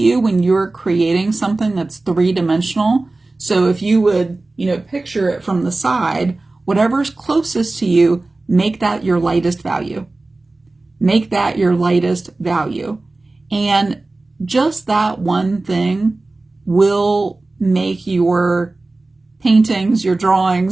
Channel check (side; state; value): left; quieter; 3.1 dB